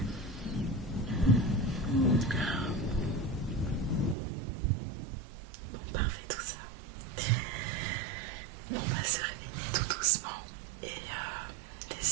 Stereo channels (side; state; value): left; drops out; at 4.2 s